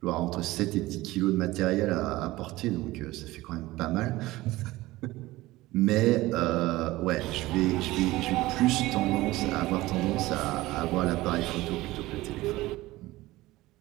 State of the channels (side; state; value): left; quieter; 18.5 dB